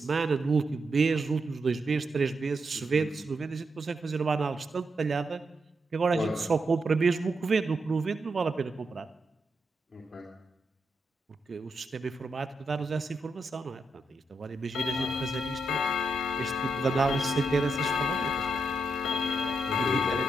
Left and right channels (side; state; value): both; normal; correlation 0.83